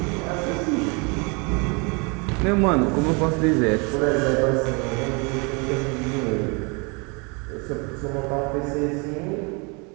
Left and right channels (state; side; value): quieter; left; 31.6 dB